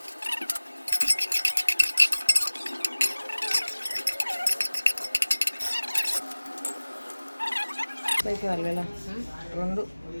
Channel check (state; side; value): inverted; both; correlation -1.00